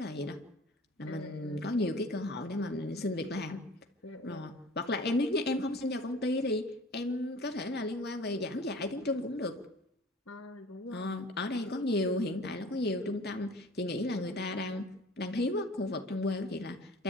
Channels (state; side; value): normal; both; correlation 0.45